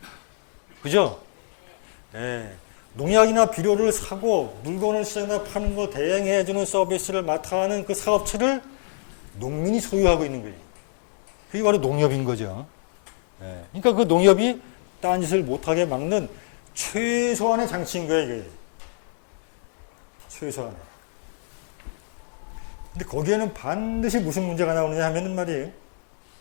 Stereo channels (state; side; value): silent; right; digital silence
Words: 그죠? 예. 농약이나 비료를 사고 물건을 시장에다 파는 거 대행해주는 서비스를 맡아 하는 그 사업체를 농민이 소유하고 있는 거예요. 그게 바로 농협인 거죠. 예. 그러니까 그 농협이 딴짓을 못하게 막는 최소한의 장치인 거예요, 이게. 최소한의. 근데 거기에는 반드시 무슨 문제가 나오느냐 하면은 말이에요.